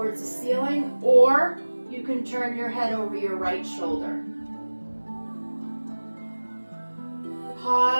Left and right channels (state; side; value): inverted; both; correlation -1.00